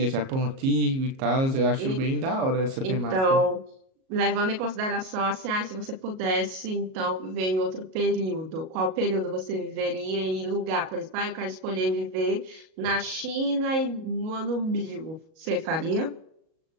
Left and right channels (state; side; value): late; left; 37 ms